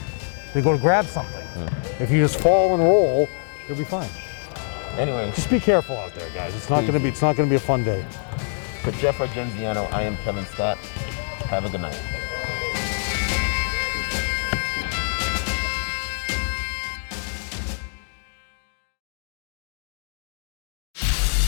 They go to grab something. If you just fall and roll, you'll be fine. Anyway, just be careful out there, guys. It's not gonna be a fun day. For Jeff Argenziano, I am Kevin Scott. Have a good night.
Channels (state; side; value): silent; right; 62 dB below the other